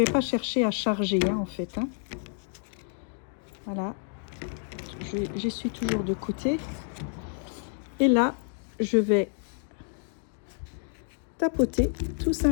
charger, hein, en fait. Hein. Voilà. J'essuie toujours de côté. Et là, je vais tapoter tout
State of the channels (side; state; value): right; silent; 59 dB below the other